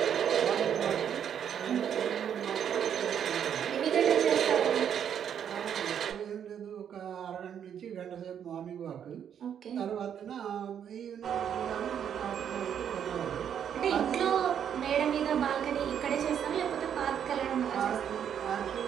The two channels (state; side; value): quieter; left; 8.8 dB